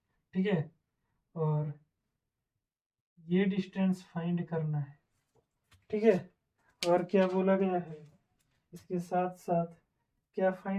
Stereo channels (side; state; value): both; identical; correlation 1.00